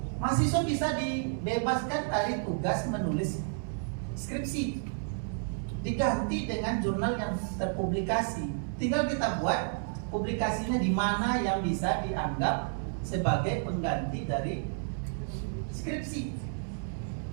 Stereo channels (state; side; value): silent; left; 57 dB below the other